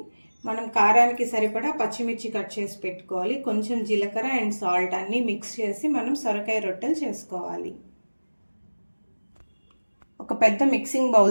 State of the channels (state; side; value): inverted; both; correlation -1.00